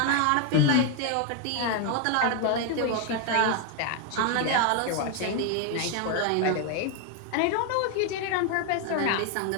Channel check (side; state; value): both; different; correlation 0.01